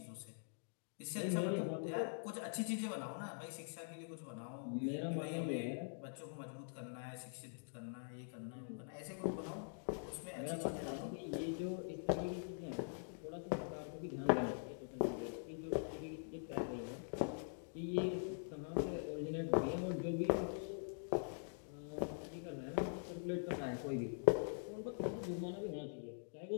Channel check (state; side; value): silent; right; digital silence